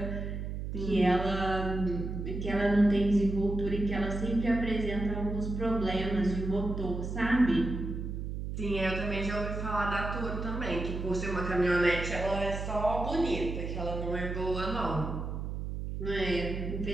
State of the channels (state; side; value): noise; right; hum, 5 dB below the sound